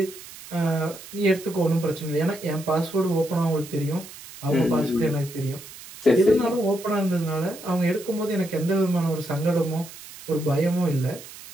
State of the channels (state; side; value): noise; right; hiss, 16 dB below the sound